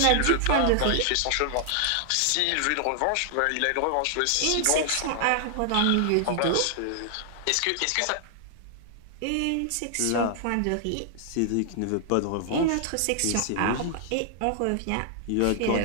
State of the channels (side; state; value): both; different; correlation 0.00